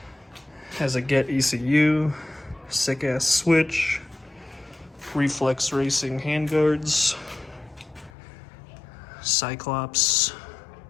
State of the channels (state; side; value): drops out; right; at 8.1 s